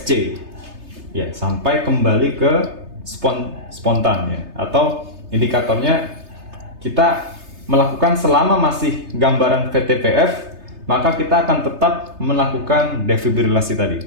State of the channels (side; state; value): left; late; 3.3 ms